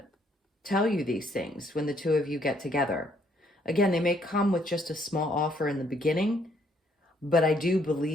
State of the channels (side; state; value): both; normal; correlation 0.68